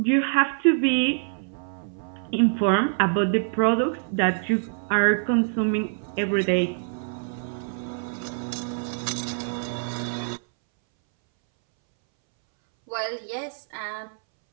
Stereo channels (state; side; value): silent; left; 61 dB below the other